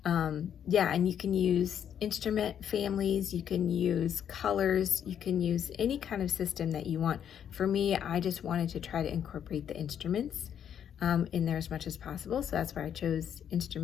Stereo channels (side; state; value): right; quieter; 9.0 dB